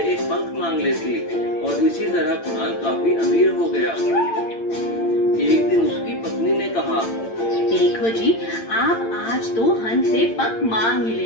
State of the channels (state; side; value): late; right; 8.8 ms